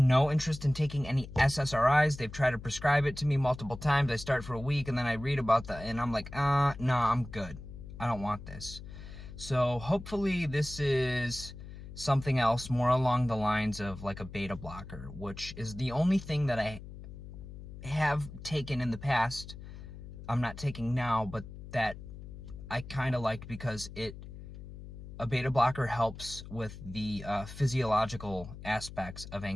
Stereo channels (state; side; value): noise; left; hum, 13 dB below the sound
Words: no interest in taking any SSRIs. They've tried to prescribe it to me multiple times. I start for a week and then I read about and I'm like, no, I'm good. I don't want this. So hopefully this is something else more along the lines of like a beta blocker, which is the only thing that I have taken in the past. I'm not taking now, but that I kind of liked because a beta blocker helps with the physiological aspects of